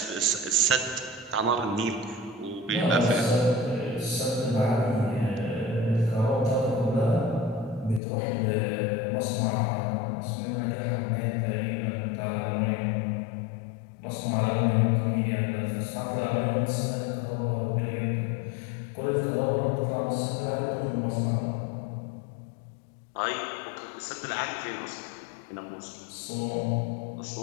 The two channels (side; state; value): right; drops out; at 8.0 s